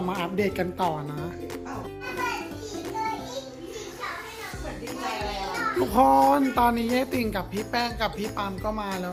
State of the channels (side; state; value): both; identical; correlation 1.00